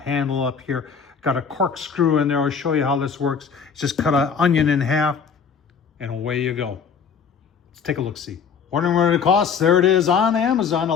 up here, got a corkscrew in there. I'll show you how this works. Just cut an onion in half and away you go. Let's take a look-see. Wondering what it costs? There it is on Amazon.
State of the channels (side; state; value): right; quieter; 6.4 dB